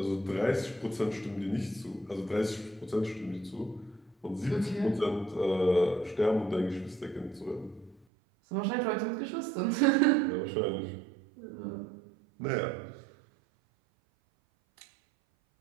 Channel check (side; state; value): left; drops out; at 8.1 s